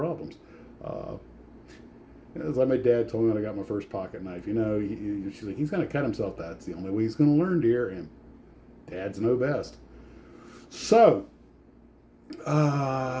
It's like my dad told me when I got my first pocket knife. She's like, he's going to cut himself. That's the only way he's going to learn, dear. And dads know best. So.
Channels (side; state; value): both; identical; correlation 1.00